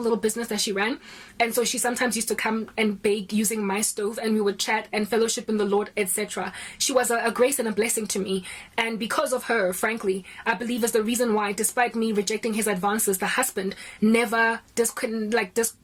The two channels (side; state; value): both; identical; correlation 1.00